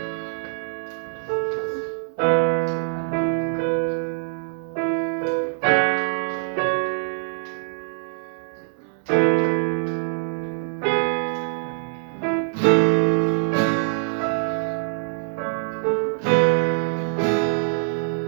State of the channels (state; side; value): silent; left; 63 dB below the other